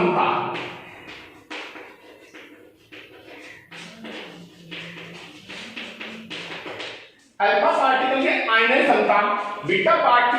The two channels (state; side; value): identical; both; correlation 1.00